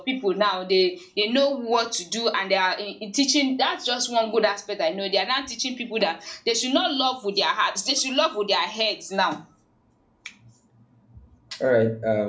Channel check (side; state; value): both; identical; correlation 1.00